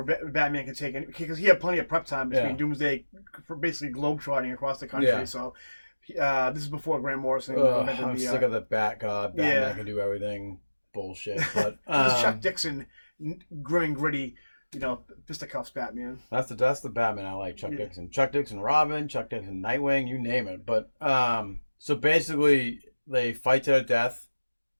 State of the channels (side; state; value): both; inverted; correlation -1.00